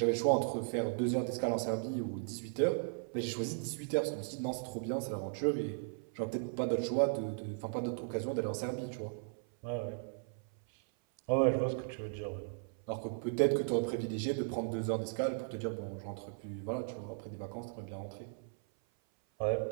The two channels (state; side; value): silent; left; 53 dB below the other